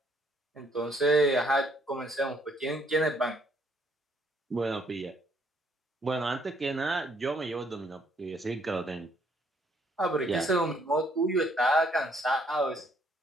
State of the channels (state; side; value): normal; both; correlation 0.67